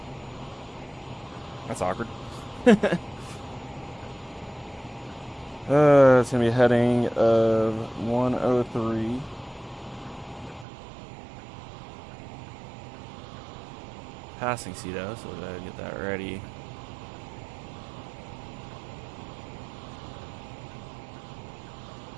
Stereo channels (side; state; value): left; drops out; at 10.7 s